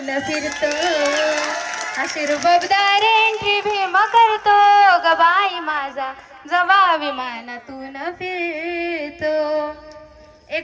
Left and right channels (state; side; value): identical; both; correlation 1.00